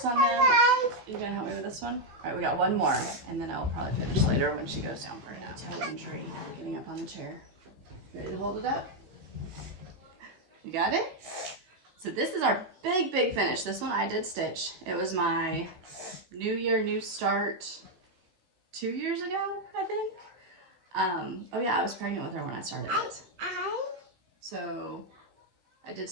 on them. You gonna help me with this one? All right, we got one more, and then I'll probably finish later when she goes down for a nap. Toe injury, getting up on the chair. Ready to hold it up? You got it? So this is our big finish. This one I did stitch. It was my New Year, New Start 2 years ago, I think. Oh yeah, I was pregnant with her when I started it. So I did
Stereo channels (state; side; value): late; left; 16 ms